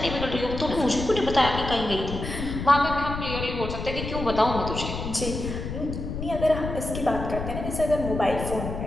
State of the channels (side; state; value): left; noise; rumble, 6 dB below the sound